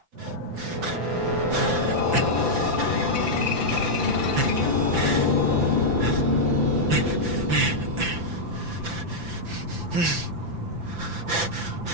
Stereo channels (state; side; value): late; left; 5.9 ms